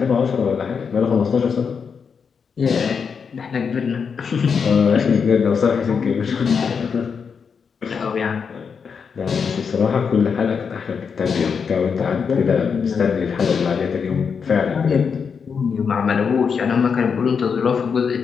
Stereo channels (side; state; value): right; quieter; 6.1 dB